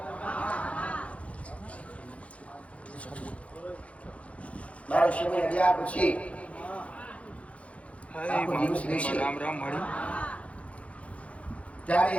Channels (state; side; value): late; right; 0.064 ms